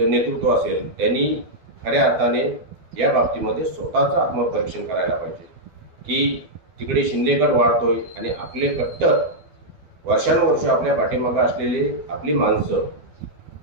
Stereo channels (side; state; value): left; late; 12 ms